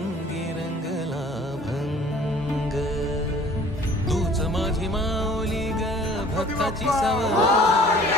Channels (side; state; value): both; normal; correlation 0.51